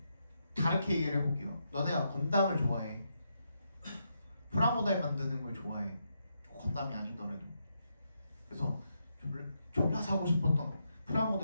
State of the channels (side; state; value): both; inverted; correlation -0.81